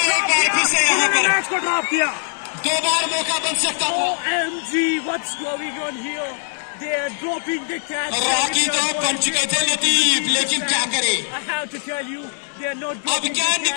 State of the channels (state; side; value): silent; right; digital silence